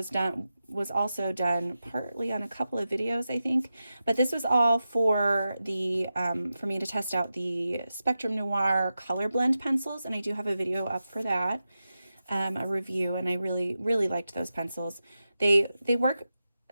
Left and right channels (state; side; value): inverted; both; correlation -0.91